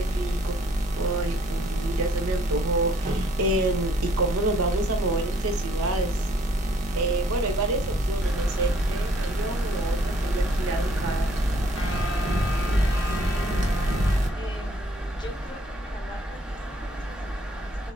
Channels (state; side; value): normal; both; correlation 0.62